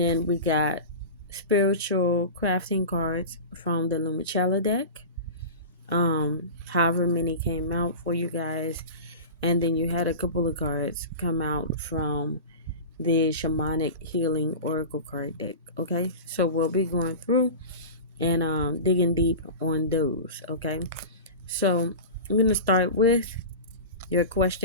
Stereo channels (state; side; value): inverted; both; correlation -0.31